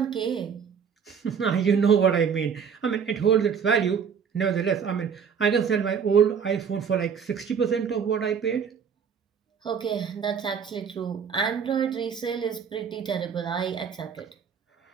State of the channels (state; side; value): quieter; left; 6.9 dB